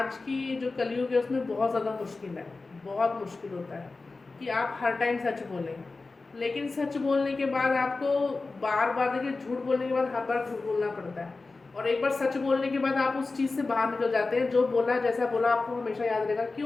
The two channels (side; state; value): right; quieter; 3.7 dB